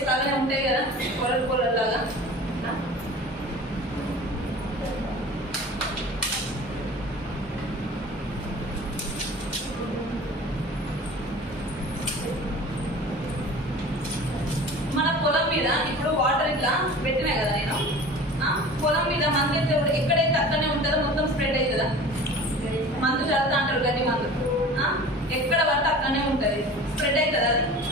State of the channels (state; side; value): normal; both; correlation 0.40